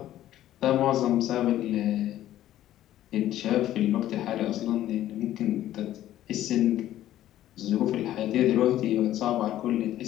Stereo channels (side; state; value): right; quieter; 13.1 dB